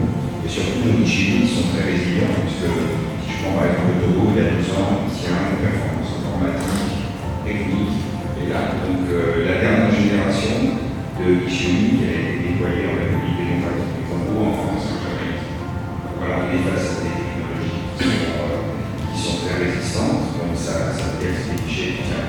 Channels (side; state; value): both; identical; correlation 1.00